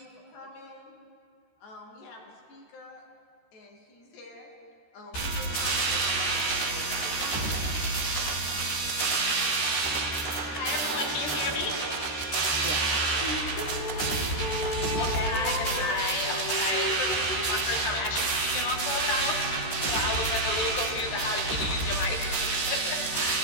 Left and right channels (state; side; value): late; right; 13 ms